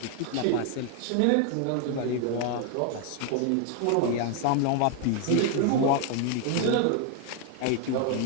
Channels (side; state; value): both; different; correlation 0.01